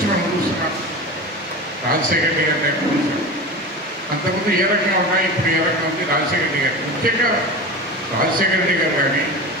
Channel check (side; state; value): both; normal; correlation 0.29